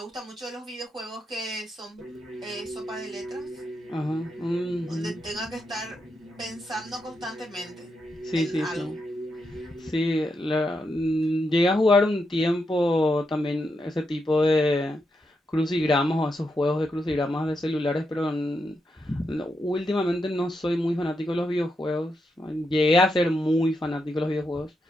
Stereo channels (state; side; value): normal; both; correlation 0.84